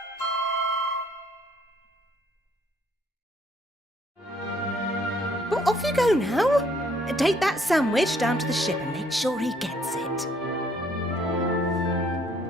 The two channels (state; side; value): normal; both; correlation 0.64